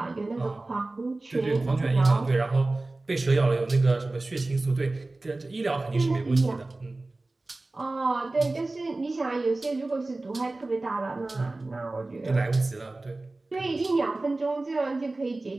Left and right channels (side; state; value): left; quieter; 3.1 dB